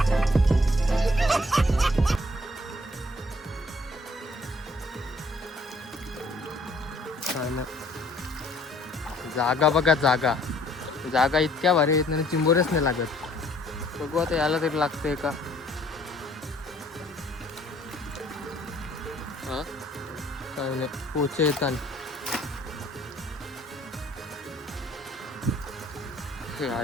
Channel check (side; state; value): both; normal; correlation 0.60